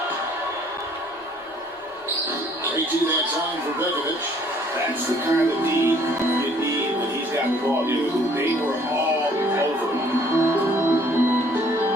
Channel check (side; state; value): both; normal; correlation 0.59